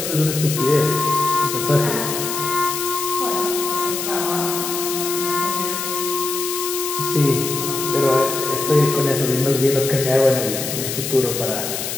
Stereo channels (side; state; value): left; noise; hiss, 4 dB below the sound